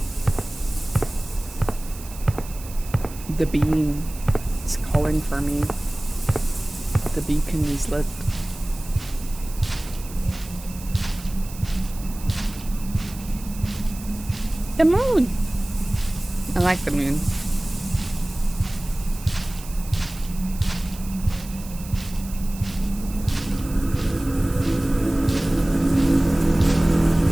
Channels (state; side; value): noise; right; hiss, 16 dB below the sound